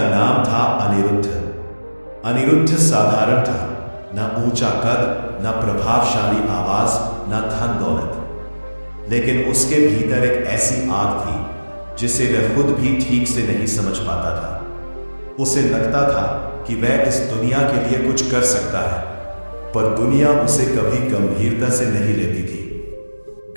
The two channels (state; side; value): inverted; both; correlation -1.00